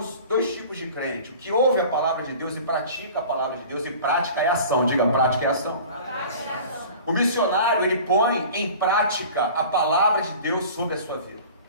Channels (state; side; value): inverted; both; correlation -0.41